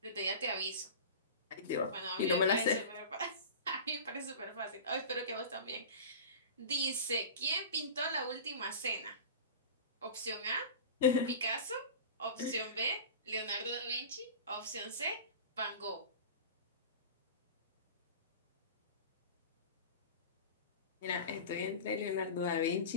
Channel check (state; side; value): inverted; both; correlation -0.33